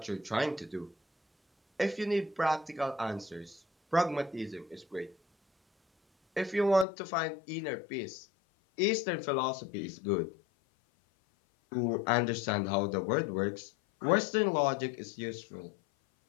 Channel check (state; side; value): drops out; right; at 6.9 s